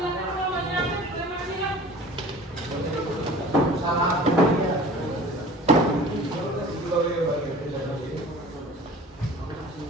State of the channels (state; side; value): normal; both; correlation 0.43